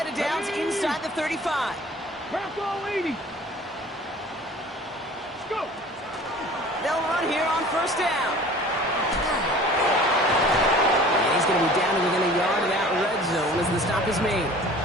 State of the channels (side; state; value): both; normal; correlation 0.46